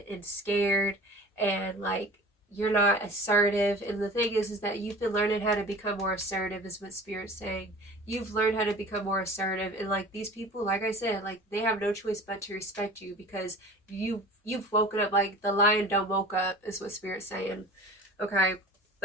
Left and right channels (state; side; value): normal; both; correlation 0.41